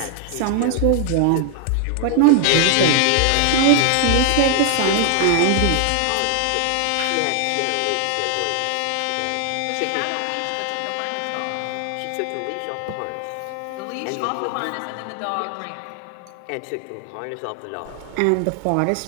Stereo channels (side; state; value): both; different; correlation 0.00